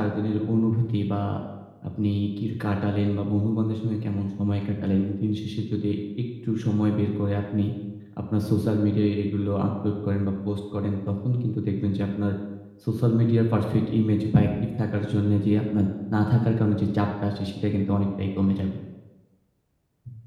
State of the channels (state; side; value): identical; both; correlation 1.00